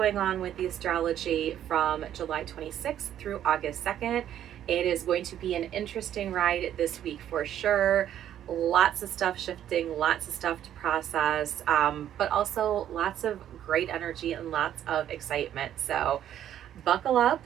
on with the astrology from July 26th through August 2nd. It is going to be an interesting ride this week for sure. Lots of stuff shifting, lots of stuff to process, but also lots of great energy and lots of excitement. So buckle up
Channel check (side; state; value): left; quieter; 10.9 dB